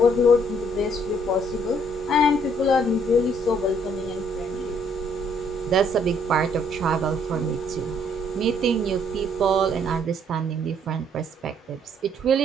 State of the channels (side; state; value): both; normal; correlation 0.65